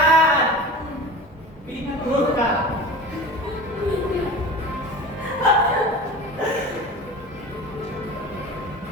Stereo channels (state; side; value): normal; both; correlation 0.35